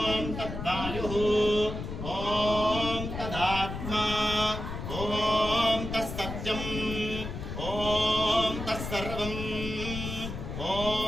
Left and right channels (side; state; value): left; noise; rumble, 6 dB below the sound